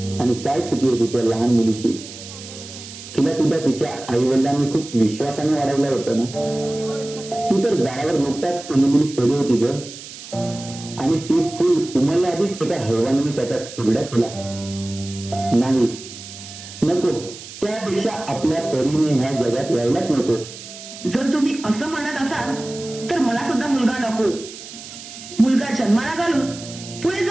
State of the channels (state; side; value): noise; right; hiss, 14 dB below the sound